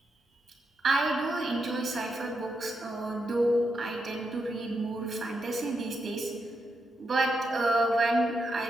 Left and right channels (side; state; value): both; normal; correlation 0.84